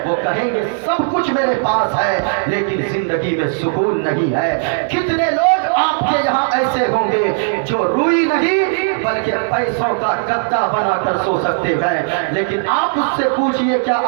वो कहेंगे सब कुछ मेरे पास है लेकिन जिंदगी में सुकून नहीं है। कितने लोग आपके यहाँ ऐसे होंगे जो रूई नहीं बल्कि पैसों का गद्दा बनाकर सो सकते हैं, लेकिन आप उससे पूछिए क्या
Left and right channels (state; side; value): silent; left; digital silence